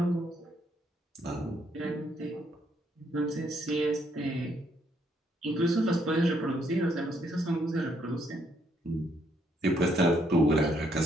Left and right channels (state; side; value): normal; both; correlation 0.72